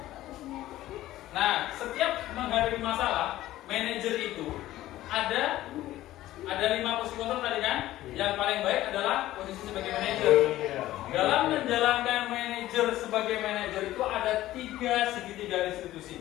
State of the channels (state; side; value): quieter; right; 15.1 dB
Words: Nah, setiap menghadapi masalah, manajer itu ada 5 posisi kontrol tadi kan? Yang paling baik adalah posisi sebagai manajer. Dalam menjalankan manajer sebagai manajer itu ada 3 segitiga